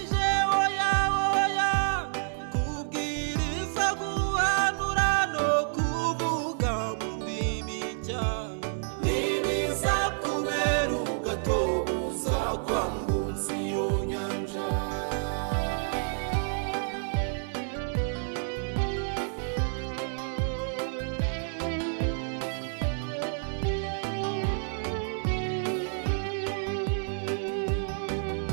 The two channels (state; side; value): silent; left; 58 dB below the other